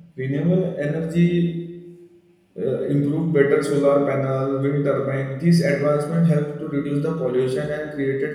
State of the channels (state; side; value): identical; both; correlation 1.00